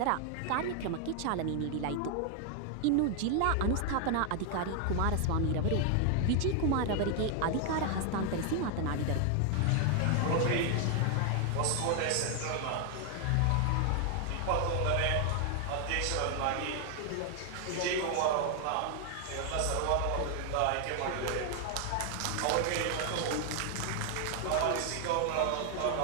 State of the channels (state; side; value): different; both; correlation 0.00